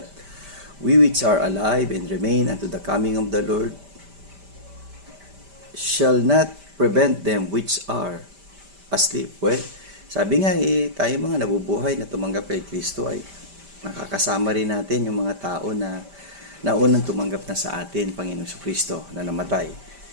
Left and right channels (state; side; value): late; left; 5.1 ms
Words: we which are alive and remain unto the coming of the Lord shall not prevent them which are asleep. Well, sabi nga tayo mga nabubuhay na tumanggap kay Kristo ay nakakasama rin natin yung mga tao na naunang tumanggap na sa atin, Panginoong Kristo, na namatay.